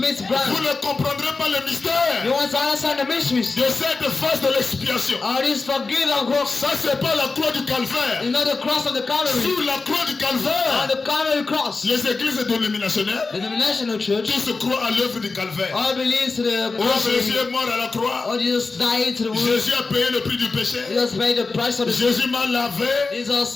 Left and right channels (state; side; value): quieter; right; 4.0 dB